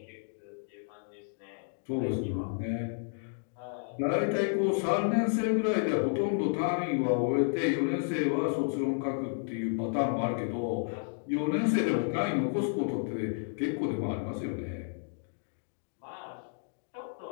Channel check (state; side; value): silent; right; digital silence